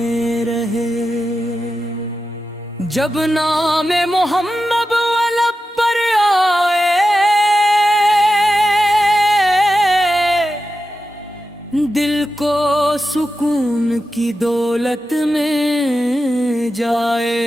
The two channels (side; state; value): both; normal; correlation 0.91